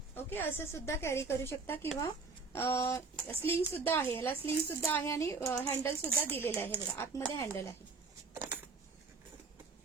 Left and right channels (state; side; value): quieter; left; 4.3 dB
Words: ओके, असं सुद्धा कॅरी करू शकता किंवा स्लिंग सुद्धा आहे, याला स्लिंग सुद्धा आहे आणि हँडल सुद्धा दिलेलं आहे. बघा आतमध्ये हँडल आहे,